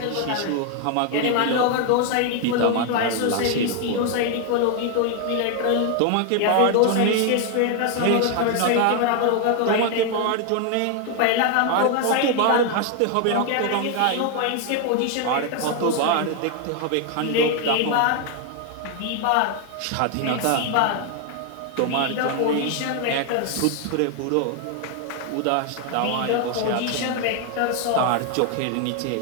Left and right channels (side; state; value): both; different; correlation 0.01